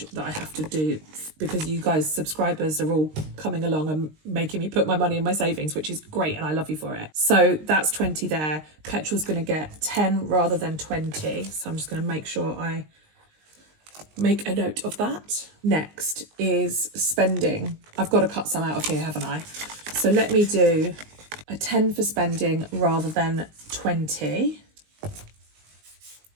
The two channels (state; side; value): late; left; 19 ms